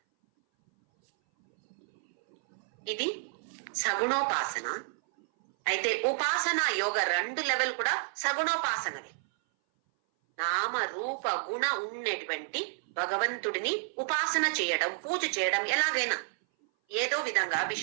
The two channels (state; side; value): silent; left; 57 dB below the other